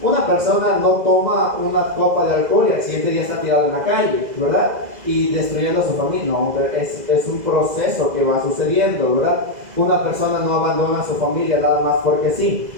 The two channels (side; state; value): left; late; 2.0 ms